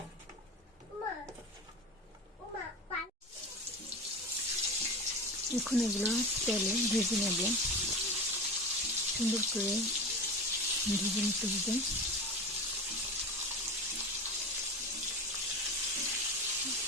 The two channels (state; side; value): normal; both; correlation 0.27